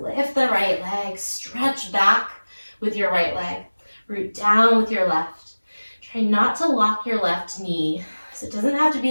Lift the right leg. Stretch back with your right leg. Root down with your left. Try not to lock your left knee. So it doesn't have to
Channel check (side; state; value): both; inverted; correlation -1.00